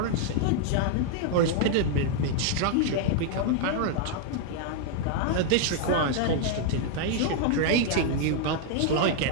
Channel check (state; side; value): different; both; correlation 0.00